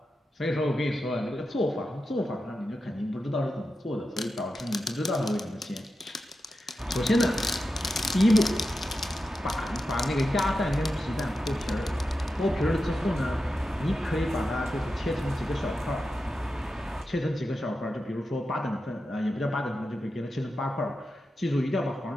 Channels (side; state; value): both; normal; correlation 0.90